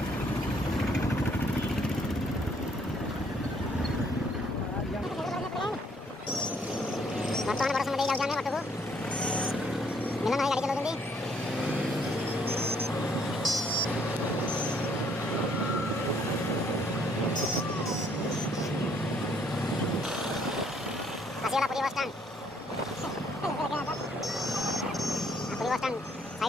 बर्तमान बड़ समय जाऊँ मठ को मिलन भाई गाड़ी चलाते आसीगला Puri bus stand Puri bus stand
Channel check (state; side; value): normal; both; correlation 0.66